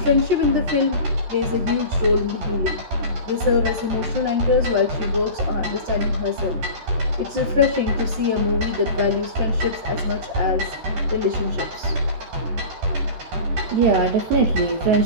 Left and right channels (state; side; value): late; left; 13 ms